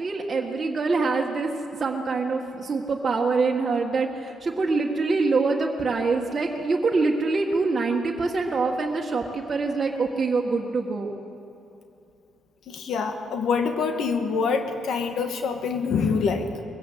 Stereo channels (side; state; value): both; normal; correlation 0.79